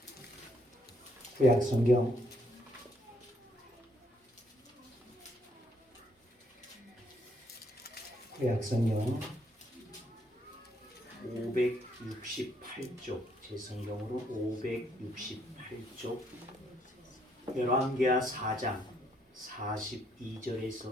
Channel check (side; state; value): both; normal; correlation 0.71